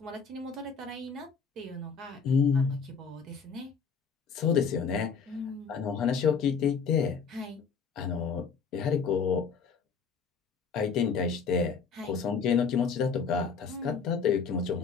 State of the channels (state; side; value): quieter; right; 5.8 dB